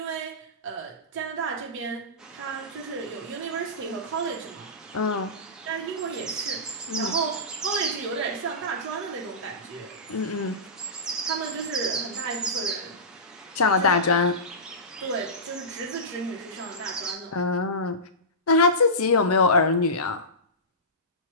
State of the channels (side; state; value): both; normal; correlation -0.20